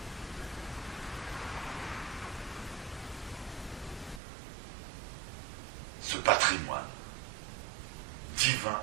Ce patrimoine divin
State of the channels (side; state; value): left; drops out; at 4.2 s